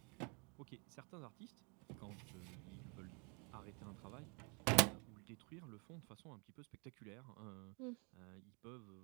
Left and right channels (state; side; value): quieter; left; 34.8 dB